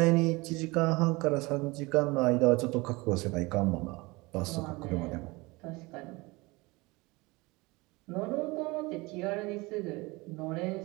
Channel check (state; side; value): quieter; left; 23.8 dB